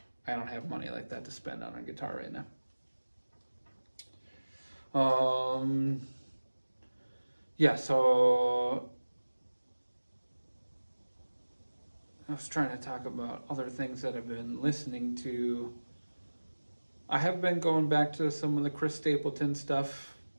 I don't have money like that to spend on a guitar right now. Yeah, so I was trying to talk about other things that I've been listening to. I have been going back to some of the Chris Stapleton stuff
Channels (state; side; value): inverted; both; correlation -1.00